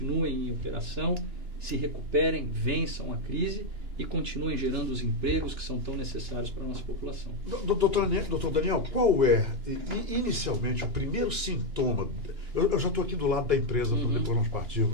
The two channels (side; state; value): left; late; 2.9 ms